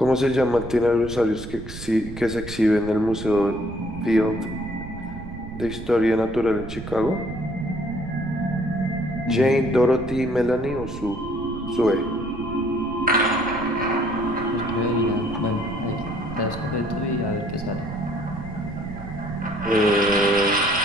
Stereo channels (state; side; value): noise; right; rumble, 11 dB below the sound